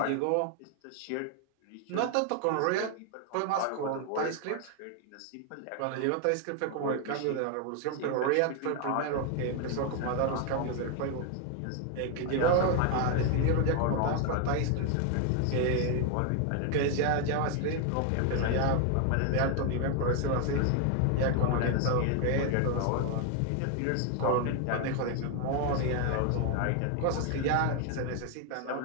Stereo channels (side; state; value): both; different; correlation 0.00